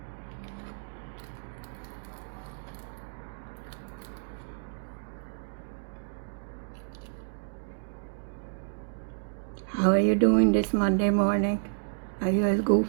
How are you doing this Monday morning? Are you as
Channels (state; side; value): silent; left; digital silence